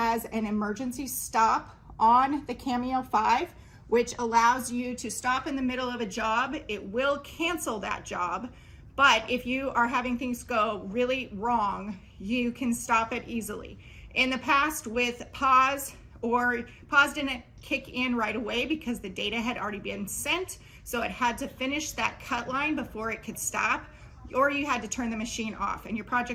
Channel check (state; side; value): identical; both; correlation 1.00